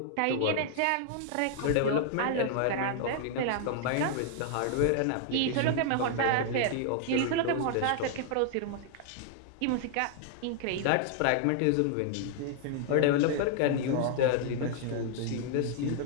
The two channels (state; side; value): different; both; correlation -0.01